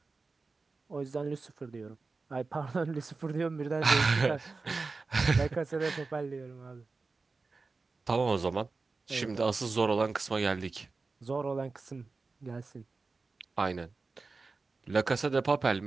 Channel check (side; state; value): left; quieter; 4.0 dB